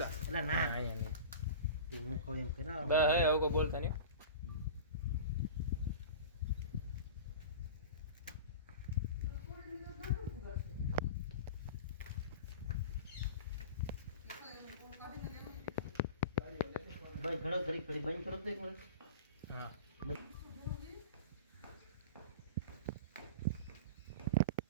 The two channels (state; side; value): inverted; both; correlation -0.33